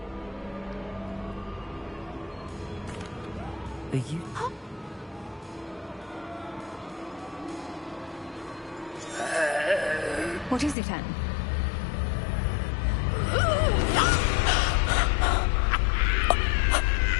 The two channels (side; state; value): right; drops out; at 10.8 s